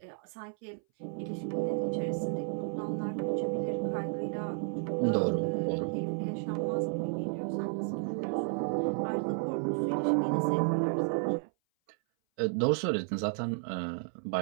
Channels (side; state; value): left; silent; 56 dB below the other